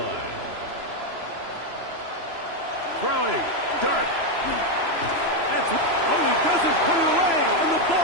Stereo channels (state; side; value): late; left; 3.0 ms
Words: Throwing. Dart. He doesn't put it away, and the